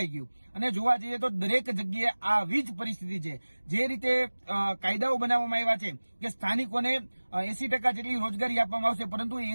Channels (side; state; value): both; inverted; correlation -1.00